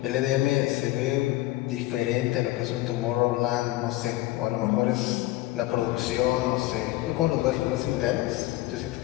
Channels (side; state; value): right; quieter; 17.4 dB